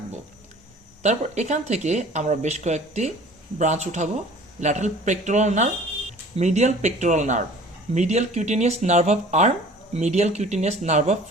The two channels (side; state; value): both; normal; correlation 0.47